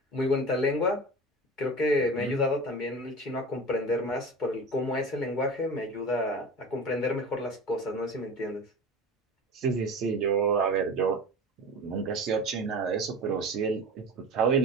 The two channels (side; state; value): both; normal; correlation 0.33